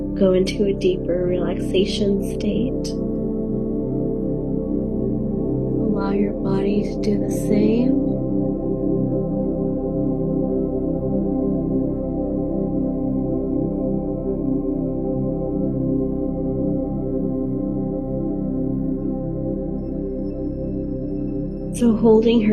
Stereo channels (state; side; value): identical; both; correlation 1.00